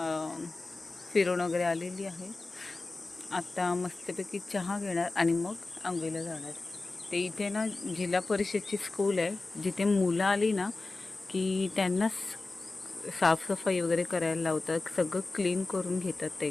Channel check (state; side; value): quieter; right; 3.4 dB